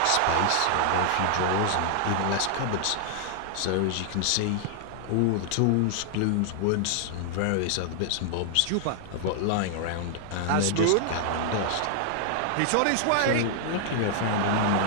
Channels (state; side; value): different; both; correlation 0.00